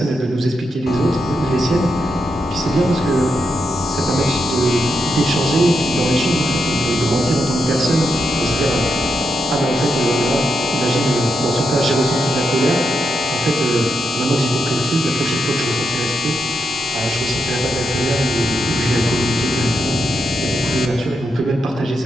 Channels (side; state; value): both; normal; correlation 0.83